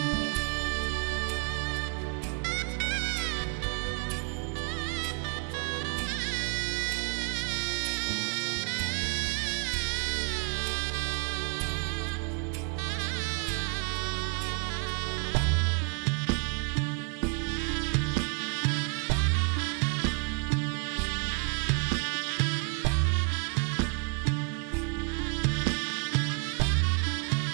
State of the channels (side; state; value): left; quieter; 37.4 dB